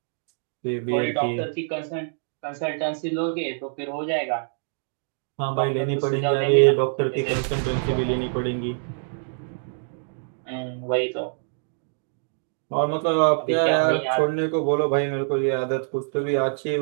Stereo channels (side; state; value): left; silent; digital silence